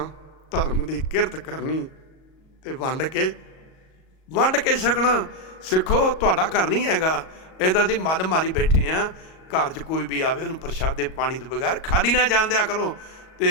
ਧਰਮ ਦੀ ਕਿਰਤ ਕਰਨੀ ਤੇ ਵੰਡ ਕੇ ਛਕਣਾ। ਸਿੱਖੋ, ਤੁਹਾਡਾ ਘਰ ਨਹੀਂ ਹੈਗਾ, ਇਹਦਾ ਅਸੀਂ ਮੱਲ ਮਾਰੀ ਬੈਠੇ ਹਾਂ। ਘਰ 'ਚ ਕੋਈ ਵੀ ਆਵੇ ਉਹਨੂੰ ਪ੍ਰਸ਼ਾਦੇ ਪਾਣੀ ਤੋਂ ਬਗੈਰ ਖਾਲੀ ਨਾ ਜਾਣ ਦਿਆ ਕਰੋ।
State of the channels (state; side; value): late; right; 38 ms